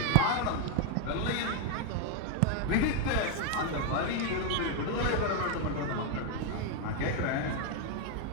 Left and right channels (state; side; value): different; both; correlation 0.01